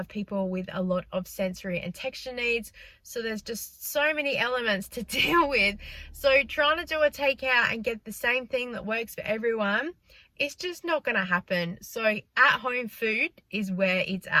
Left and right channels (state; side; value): identical; both; correlation 1.00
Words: people with a lot of sensory and texture needs, so there's just so many elements to deal with. So trying to do a takeout and get the same thing that works for everyone, it's just not going to happen. So at home food is where it's